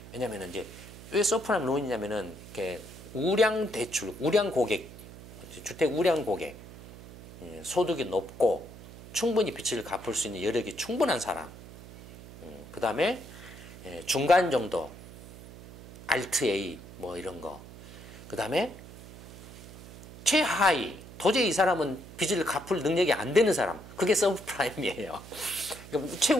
왜냐면은 이제 왜 서프라임 론이냐면은 이렇게 우량 대출, 우량 고객, 주택 우량 고객, 소득이 높고 충분히 빚을 갚을 수 있는 여력이 충분한 사람. 그 다음에 중간 정도, 알트 A 뭐 이런 거. 그 다음에 최하위, 도저히 이 사람은 빚을 갚을 능력이 안 되는 사람. 그게 서브프라임이에요. 그러니까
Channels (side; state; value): right; noise; hum, 16 dB below the sound